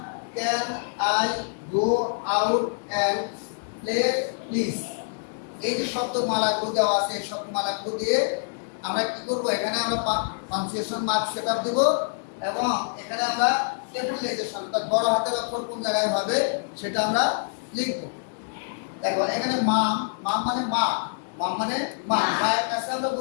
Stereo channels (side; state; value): right; silent; digital silence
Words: can I go out and play please. এই যে শব্দমালাগুলো দেওয়া আছে, এই শব্দমালাগুলো দিয়ে আমরা কি করব, এখানে আমরা পাঞ্চুয়েশন মার্ক সেটআপ দেব এবং এখানে আমরা ক্যাপিটালাইজেশন বড় হাতের অক্ষর কোন জায়গায় হবে সেটা আমরা লিখব। দেখো এখানে মাম, মাম মানে মা, মাম মানে মা। মায়ের কাছে আমরা